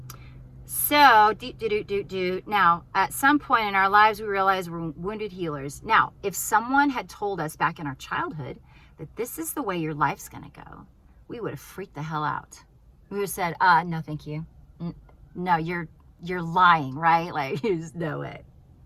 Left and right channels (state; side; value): identical; both; correlation 1.00